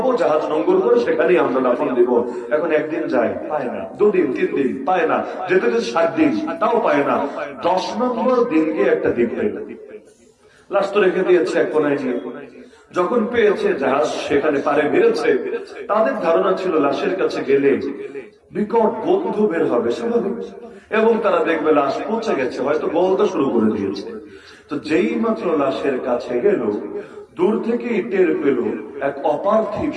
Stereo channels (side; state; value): both; identical; correlation 1.00